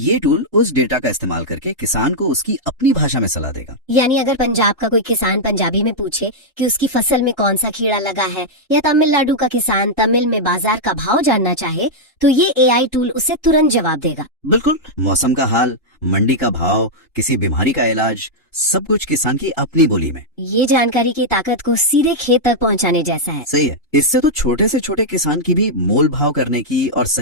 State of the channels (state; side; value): normal; both; correlation -0.05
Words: टूल उस डेटा का इस्तेमाल करके किसान को उसकी अपनी भाषा में सलाह देगा। यानी अगर पंजाब का कोई किसान पंजाबी में पूछे कि उसकी फसल में कौन सा कीड़ा लगा है, या तमिलनाडु का किसान तमिल में बाजार का भाव जानना चाहे, तो ये AI टूल उसे तुरंत जवाब देगा। बिल्कुल। मौसम का हाल, मंडी का भाव, किसी बीमारी का इलाज, सब कुछ किसान की अपनी बोली में। ये जानकारी की ताकत को सीधे खेत तक पहुंचाने जैसा है। सही है। इससे तो छोटे से छोटे किसान की भी मोल भाव करने की और